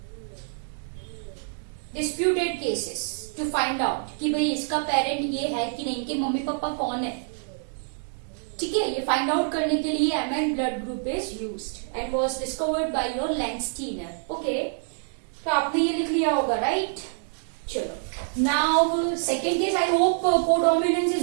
Disputed cases to find out कि भाई इसका parent ये है कि नहीं, कि mummy papa कौन है. ठीक है, ये फाइंड आउट करने के लिए Mn blood group is used and was discovered by your Landsteiner. Okay, तो आपने ये लिख लिया होगा, राइट? चलो, now second case. I hope codominance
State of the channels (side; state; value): left; silent; digital silence